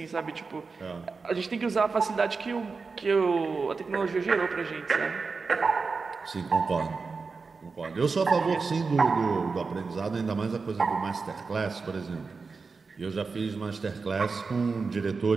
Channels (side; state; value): left; quieter; 4.5 dB